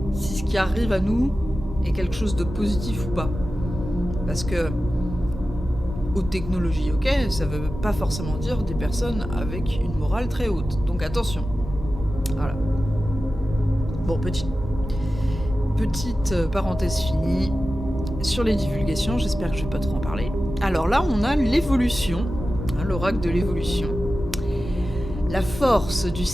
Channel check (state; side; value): normal; both; correlation 0.94